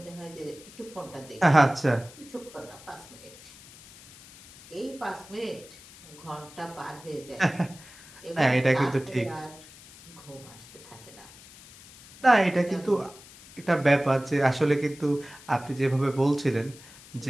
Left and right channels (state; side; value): noise; left; hiss, 20 dB below the sound